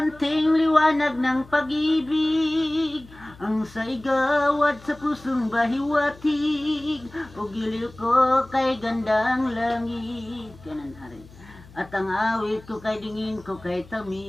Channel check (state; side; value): noise; left; hum, 22 dB below the sound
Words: liwanag ng pag-ibig ang saigawad sa pusong bahiwatig, o giliw ko kay gandang langit. Kanan hari. At ang awit ko kay dingin ko kay